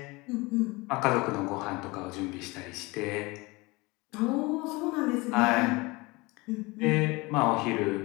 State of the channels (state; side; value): quieter; right; 24.0 dB